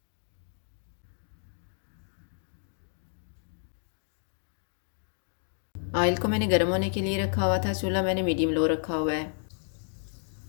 ऑयल को मैंने गर्म होने के लिए रखा हुआ था, चूल्हा मैंने मीडियम लो रखा हुआ है।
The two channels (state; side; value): silent; right; digital silence